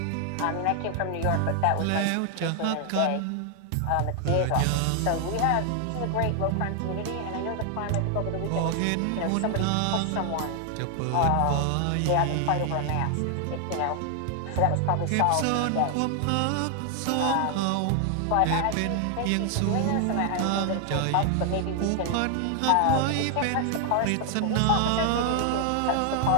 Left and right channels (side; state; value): both; different; correlation 0.00